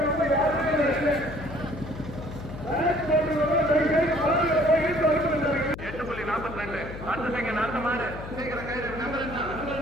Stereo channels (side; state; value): left; noise; hum, 11 dB below the sound